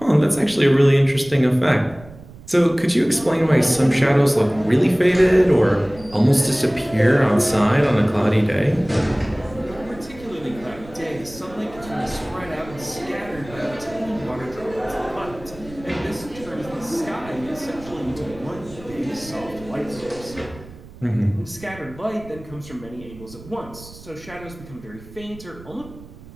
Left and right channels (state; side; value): noise; right; rumble, 19 dB below the sound